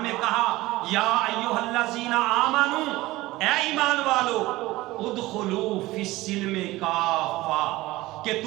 میں کہا یا ایھا الذین آمنوا، اے ایمان والو، ادخلوا فی السلم کافہ، کہ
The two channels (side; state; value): left; quieter; 18.7 dB